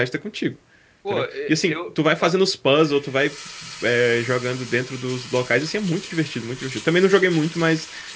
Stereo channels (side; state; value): both; identical; correlation 1.00